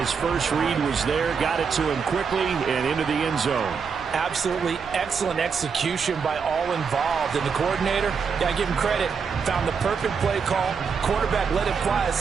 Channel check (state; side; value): quieter; left; 6.0 dB